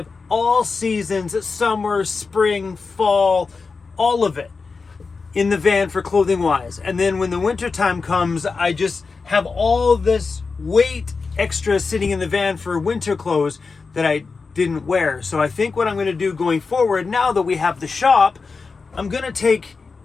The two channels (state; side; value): quieter; right; 4.5 dB